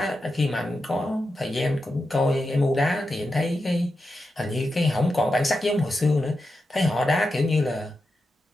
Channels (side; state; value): both; normal; correlation 0.89